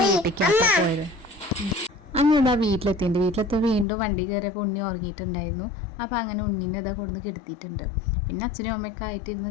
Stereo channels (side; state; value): right; drops out; at 3.9 s